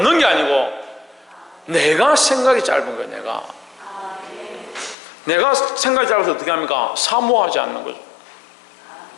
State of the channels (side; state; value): right; drops out; at 5.0 s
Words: 게 아니고 내가 생각이 짧은 거예요. 내가 생각이 짧아서 어떻게 합니까? 사모하지 않는 거죠.